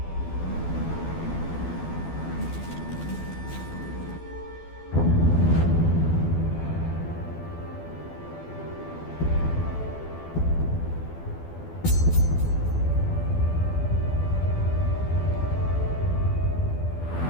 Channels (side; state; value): right; late; 12 ms